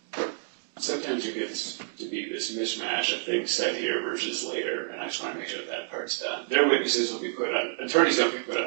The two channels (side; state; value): left; silent; digital silence